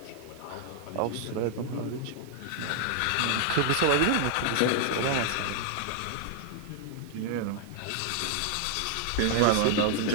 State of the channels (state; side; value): different; both; correlation 0.00